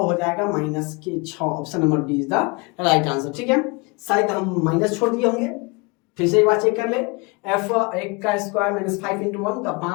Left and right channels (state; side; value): quieter; right; 28.4 dB